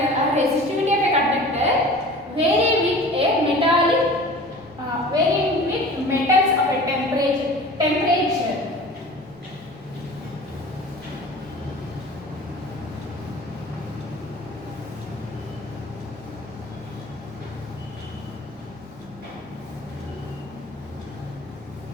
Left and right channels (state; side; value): noise; left; rumble, 27 dB below the sound